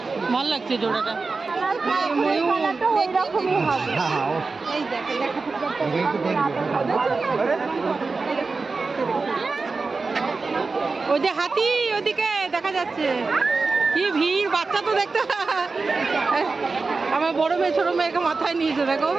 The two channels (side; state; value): left; quieter; 4.1 dB